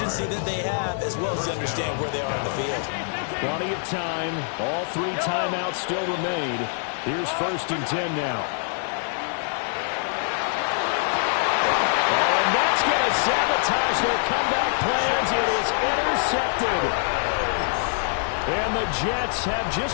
that they have as well as they understand where they are on the field? Plenty of time. All three timeouts still remain. Here's 1st and 10 now. Sabotage their comeback plans. It is intercepted. And the Jets have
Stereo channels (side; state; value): right; silent; 62 dB below the other